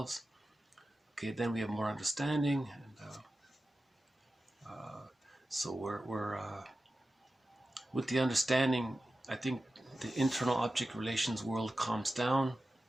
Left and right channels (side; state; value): both; normal; correlation 0.94